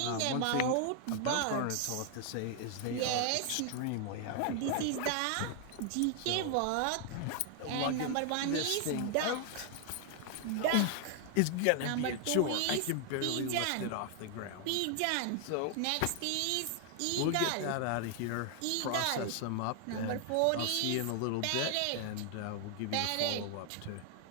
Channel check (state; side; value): different; both; correlation 0.00